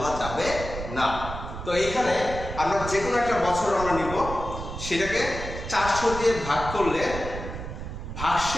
যাবে না। তো এখানে আমরা যে কোনো একটা বছর আমরা নিব, সেটাকে 400 দিয়ে ভাগ করলে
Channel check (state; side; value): noise; right; rumble, 8 dB below the sound